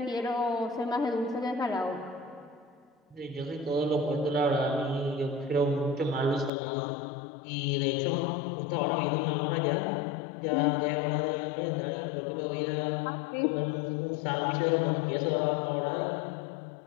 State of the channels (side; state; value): right; drops out; at 6.5 s